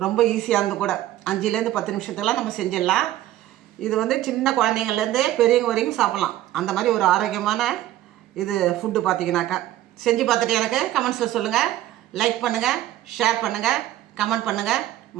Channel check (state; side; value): quieter; left; 13.9 dB